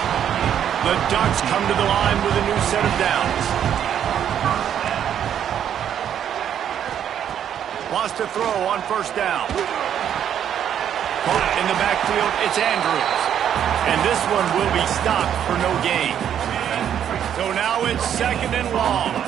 The Ducks come to the line with a new set of downs. Wants to throw on 1st down. Caught in the backfield, it's Andrews. And this one will be stopped for no gain. So now it's 2nd and long.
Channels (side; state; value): left; quieter; 9.4 dB